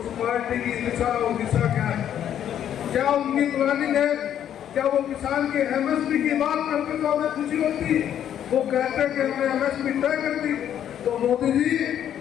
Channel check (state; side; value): quieter; right; 10.1 dB